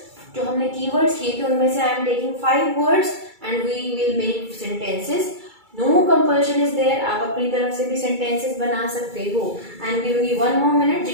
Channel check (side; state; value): left; late; 2.3 ms